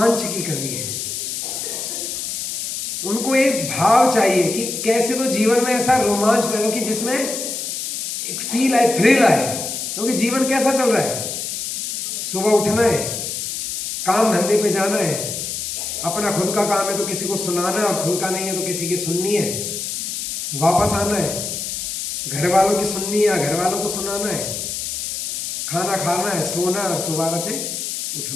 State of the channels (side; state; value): left; noise; hiss, 4 dB below the sound